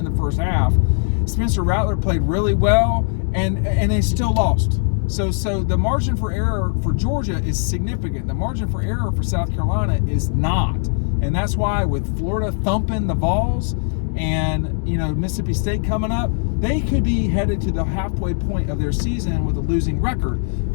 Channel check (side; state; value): right; silent; digital silence